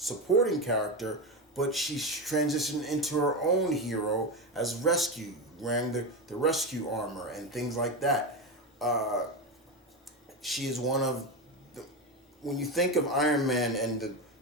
character, but she transitioned into her own hero as rescue, wearing the rescue armor and things like that. She is one of when you think of Iron Man and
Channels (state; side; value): normal; both; correlation 0.16